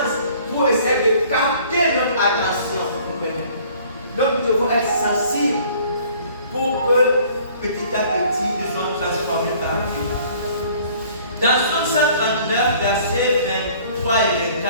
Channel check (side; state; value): both; inverted; correlation -0.54